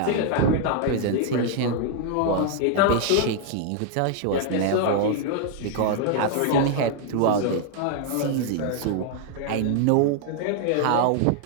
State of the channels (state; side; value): different; both; correlation 0.00